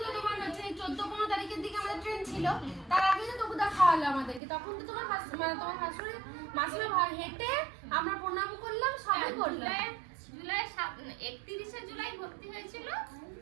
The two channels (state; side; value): drops out; left; at 4.4 s